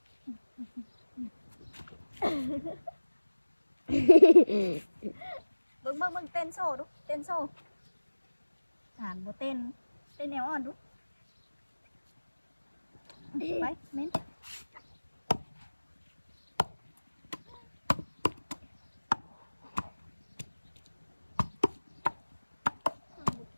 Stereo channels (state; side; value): inverted; both; correlation -1.00